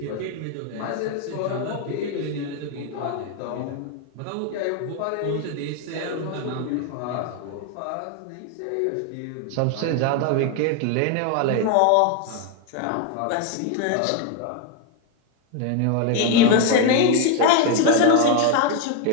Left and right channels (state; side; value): different; both; correlation 0.01